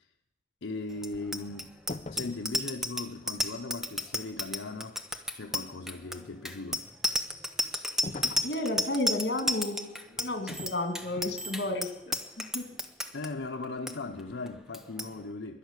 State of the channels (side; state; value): both; normal; correlation 0.40